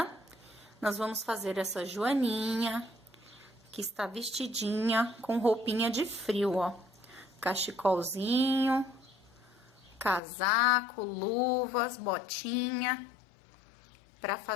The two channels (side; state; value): right; drops out; at 10.2 s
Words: nós vamos fazer essa joaninha, que está vestidinha com roupinha de frio, ó. Cachecolzinho, casaco, luvas, botinha. Para